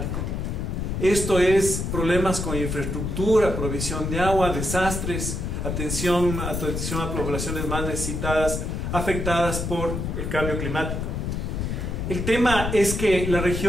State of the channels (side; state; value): left; noise; rumble, 3 dB below the sound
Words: Esto es problemas con infraestructura, provisión de agua, desastres, atención a poblaciones más necesitadas, afectadas por el cambio climático. El tema es que la